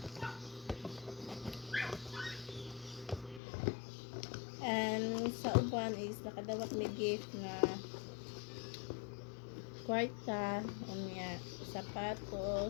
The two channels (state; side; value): drops out; right; at 3.4 s